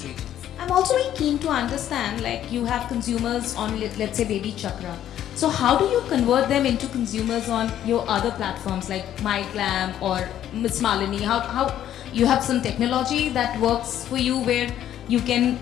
regions. I'm also very keen to understand, like you have consumers on, let's say, Baby Chakra. So how do you convert them into consumers on your other platforms like My Glam or Miss Malini? How you have some technology that works for you where you can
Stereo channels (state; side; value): quieter; right; 11.3 dB